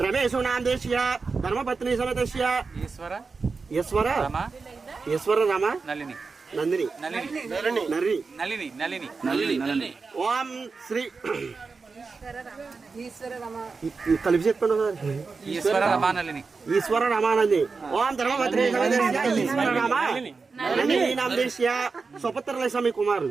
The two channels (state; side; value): quieter; left; 4.6 dB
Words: రమేష్ నామదేశ్య ధర్మపత్ని సమేతస్య ఈశ్వర రమ నందిని నర్రి. ఓం శ్రీ కలిపి చెప్పండి. ఈశ్వర రమానంది. ఓం ధర్మపత్ని సమేతస్య ఈశ్వర రమ నందిని నామదేశ్య స్వపుత్రుల స్వామి